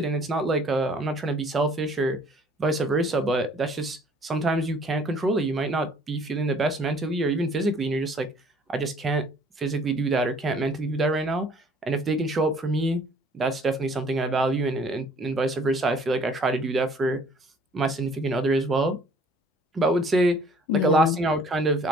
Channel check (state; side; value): normal; both; correlation 0.56